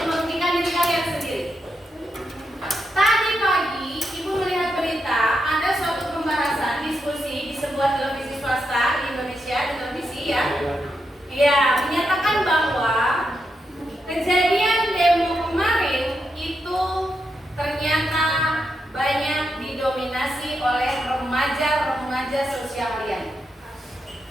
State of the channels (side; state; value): both; normal; correlation 0.84